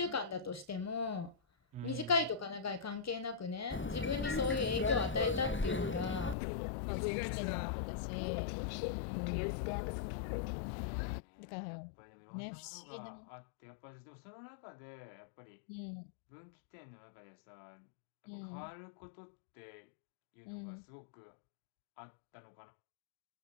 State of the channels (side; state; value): right; drops out; at 6.4 s